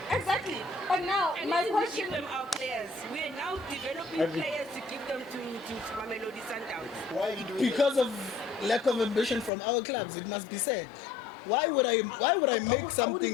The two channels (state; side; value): drops out; right; at 9.5 s